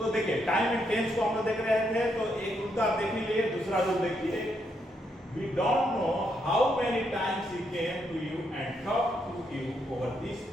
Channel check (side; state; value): both; normal; correlation 0.77